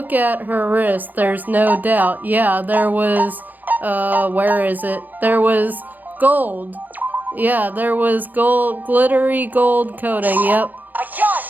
at her wrist, there's no doubt. Yeah, there was, where is it? There was gold. Yeah, there was gold, glittery gold coating, yep. I got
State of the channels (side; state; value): left; late; 0.088 ms